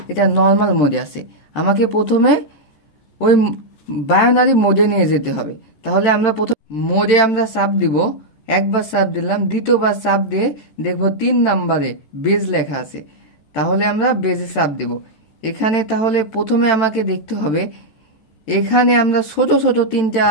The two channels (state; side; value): late; right; 14 ms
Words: এটা নর্মাল মোডে আছে। আমাকে প্রথমে ওই বাইনারি মোডে নিয়ে যেতে হবে। তাহলে আমরা প্রথম মোডে আমরা চাপ দিব, একবার চাপ দিলাম, দ্বিতীয়বার চাপ দিয়ে দেখবো 3 নম্বরে বেজ লেখা আছে। তাহলে আমরা বেজে চাপ দিব। এখানে তাহলে প্রথমে আমাকে দেখতে হবে, এখানে আমরা ছোট ছোট তিনটা